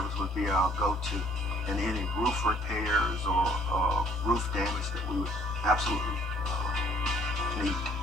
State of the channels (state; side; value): normal; both; correlation 0.60